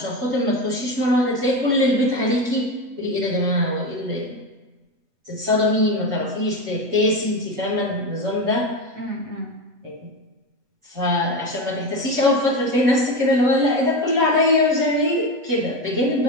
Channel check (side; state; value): left; late; 8.2 ms